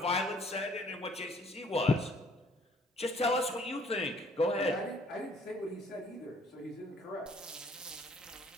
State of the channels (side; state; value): both; normal; correlation 0.59